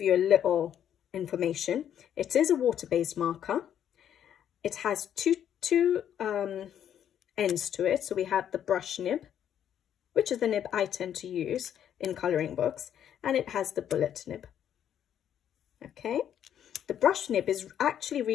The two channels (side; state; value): right; quieter; 9.8 dB